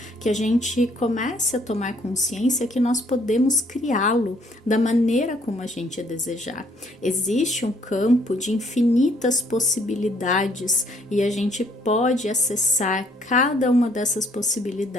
que a gente comece a tomar consciência que nós podemos criá-lo da maneira como a gente desejar. Existe um campo de infinitas possibilidades e a gente pode acessar cada uma dessas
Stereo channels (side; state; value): both; normal; correlation 0.65